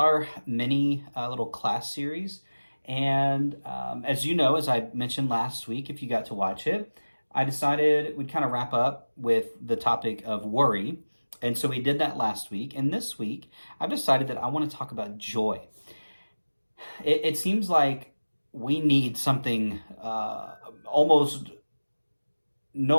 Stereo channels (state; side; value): inverted; both; correlation -1.00